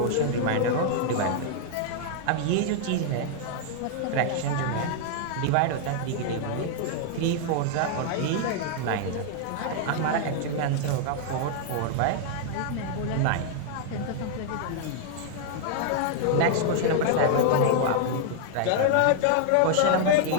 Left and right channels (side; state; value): both; different; correlation 0.00